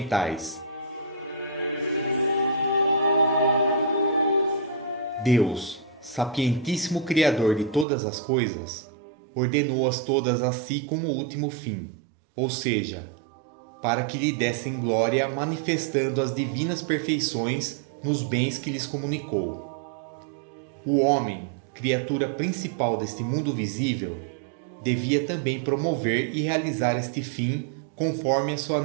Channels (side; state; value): left; drops out; at 7.9 s